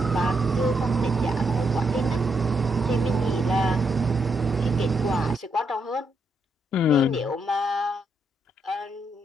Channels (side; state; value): both; normal; correlation 0.78